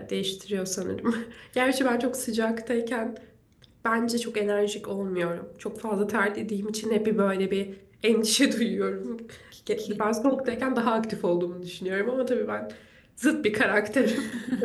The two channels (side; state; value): both; identical; correlation 1.00